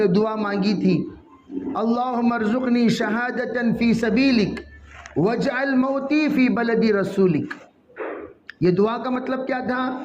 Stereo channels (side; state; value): both; identical; correlation 1.00